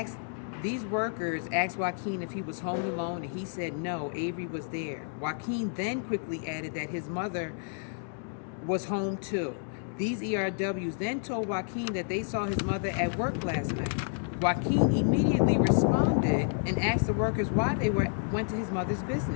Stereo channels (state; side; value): silent; right; digital silence